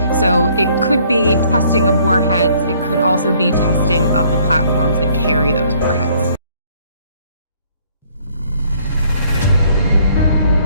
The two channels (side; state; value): both; inverted; correlation -0.62